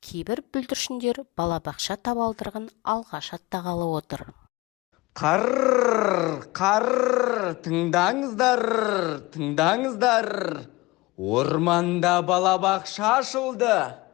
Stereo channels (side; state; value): right; quieter; 21.4 dB